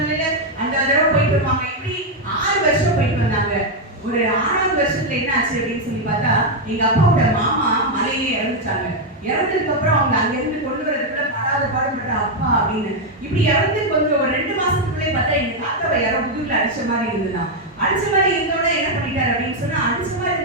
அந்த தடவை போயிட்டு வருவாங்க. இப்படி 6 வருஷம் போயிட்டு வந்தாங்க. ஒரு 6வது வருஷத்துல என்ன ஆச்சு அப்படின்னு சொல்லி பார்த்தா எங்க அப்பாவோட மாமா மலையிலே இறந்துட்டாங்க. இறந்ததுக்கு அப்புறம் அவங்க அங்க இருந்து கொண்டு வரதுக்குள்ள படாத பாடுபட்ட அப்பா அப்படின்னு இப்படி இறந்து கொஞ்சம் ஒரு 2 மாசத்துக்குள்ளே பார்த்தா எங்க தாத்தாவை யாரோ முதுகுல அடிச்ச மாதிரி இருந்துதான். அடிச்ச மாதிரி இருந்தோட என்ன பண்ணிட்டாரு அப்படின்னு சொன்னா, அடிச்ச மாதிரி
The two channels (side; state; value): both; normal; correlation 0.02